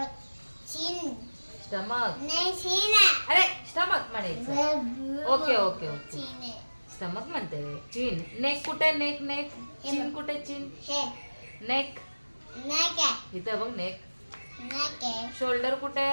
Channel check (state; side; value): inverted; both; correlation -1.00